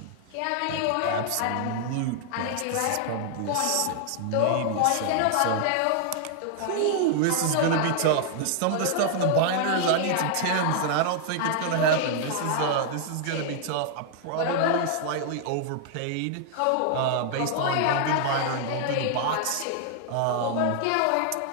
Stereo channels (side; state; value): both; different; correlation 0.00